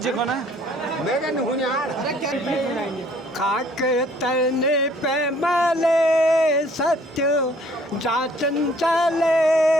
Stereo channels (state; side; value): normal; both; correlation 0.59